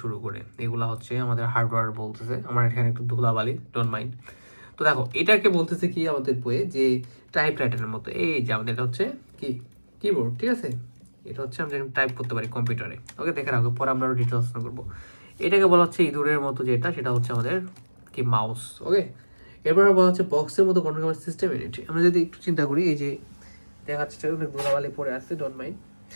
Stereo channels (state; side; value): inverted; both; correlation -1.00